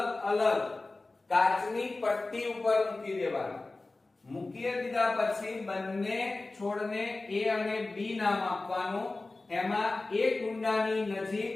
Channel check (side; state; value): right; quieter; 3.3 dB